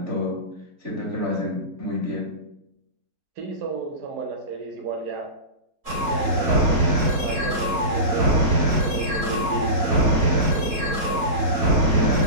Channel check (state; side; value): late; left; 4.0 ms